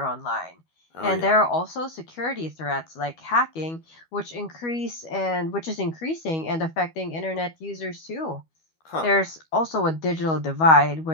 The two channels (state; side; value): late; right; 12 ms